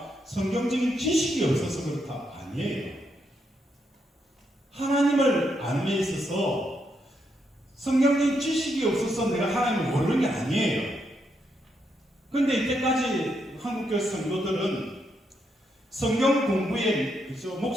성경적인 지식이 없어서 그렇다. 아니에요. 하나님을 아는 데 있어서 성경적인 지식이 없어서 내가 하나님을 모르는 게 아니에요. 그런데 이때까지 한국교회 성도들은 성경 공부에 그죠?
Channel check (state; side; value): normal; both; correlation 0.79